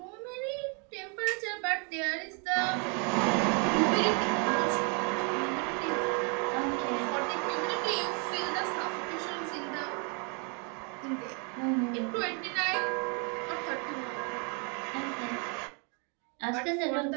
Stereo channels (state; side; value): quieter; left; 36.2 dB